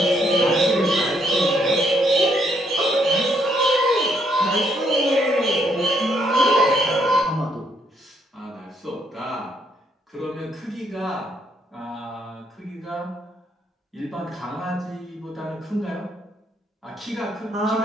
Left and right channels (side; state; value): both; normal; correlation 0.72